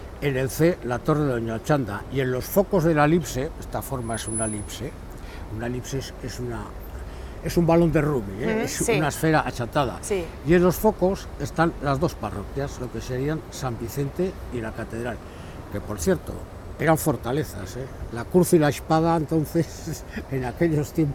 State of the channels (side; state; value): both; identical; correlation 1.00